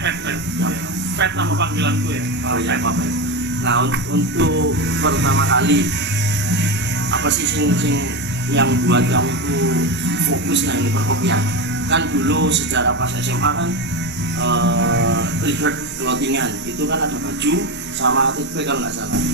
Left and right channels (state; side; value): normal; both; correlation 0.16